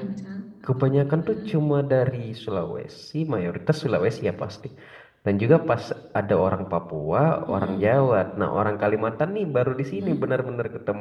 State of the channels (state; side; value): identical; both; correlation 1.00